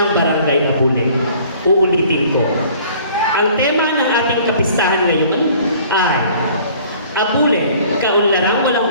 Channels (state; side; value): inverted; both; correlation -0.53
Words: Barangay Abuleng? Uulitin ko. Ang tema ng ating kapistahan ngayon ay Abuleng, kaunlaran walang